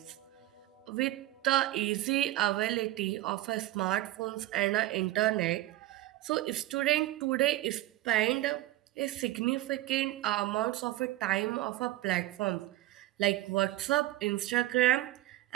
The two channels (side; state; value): left; quieter; 15.8 dB